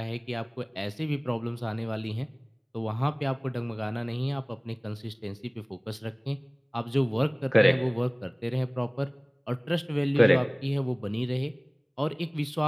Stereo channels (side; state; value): both; identical; correlation 1.00